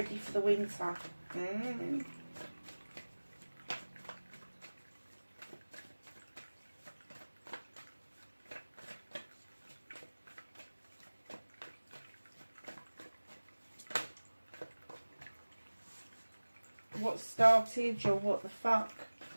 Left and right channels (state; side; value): inverted; both; correlation -1.00